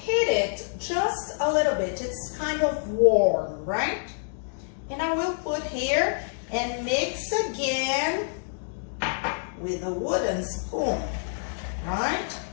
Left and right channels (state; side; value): silent; right; 60 dB below the other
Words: it just a little bit. It's kind of warm, right? And I will put here and mix again with a wooden spoon, right?